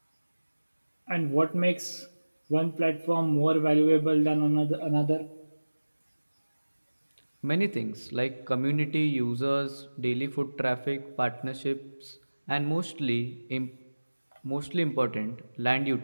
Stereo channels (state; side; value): inverted; both; correlation -1.00